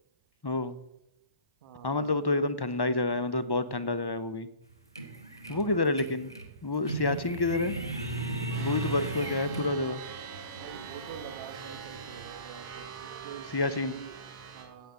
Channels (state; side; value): inverted; both; correlation -0.46